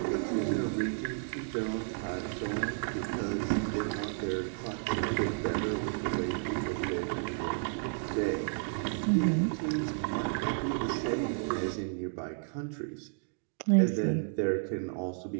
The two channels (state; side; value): silent; left; digital silence